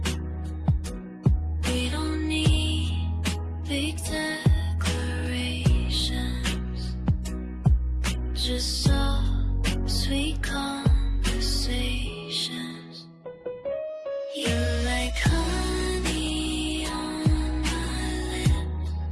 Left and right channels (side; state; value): both; identical; correlation 1.00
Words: We don't need big declarations, just soft, sweet conversations. You're like honey on my lips,